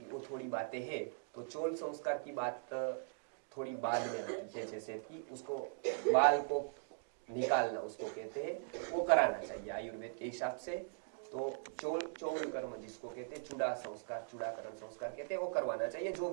वो थोड़ी बातें हैं, तो चोल संस्कार की बात थोड़ी बाद में आती है। जैसे कि उसको बाल को निकालना उसको कहते हैं, वो कराना चाहिए आयुर्वेद के हिसाब से। तो चोल कर्म जिसको कहते हैं, चूड़ा संस्कार, चूड़ाकरण संस्कार कहते हैं, वो करवाना चाहिए। जो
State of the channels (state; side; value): silent; left; digital silence